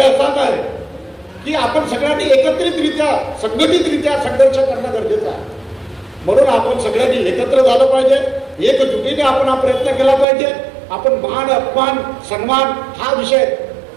असाच आहे की आपण सगळ्यांनी एकत्रितरित्या संघटितरित्या संघर्ष करणं गरजेचं आहे. म्हणून आपण सगळ्यांनी एकत्र झालं पाहिजे, एकजुटीने आपण हा प्रयत्न केला पाहिजे. आपण मान अपमान सन्मान हा विषय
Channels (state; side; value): drops out; left; at 10.2 s